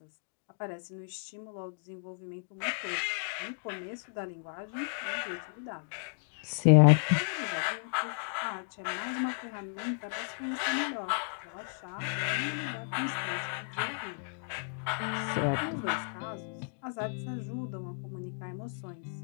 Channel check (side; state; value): right; silent; digital silence